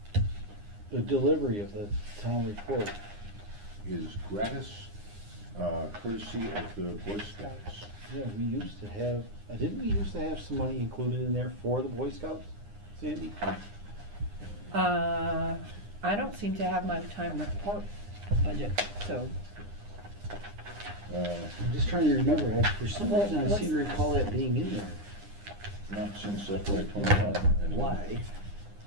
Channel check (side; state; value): left; late; 9.8 ms